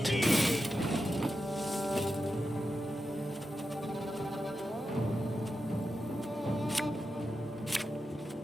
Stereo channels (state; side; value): normal; both; correlation 0.89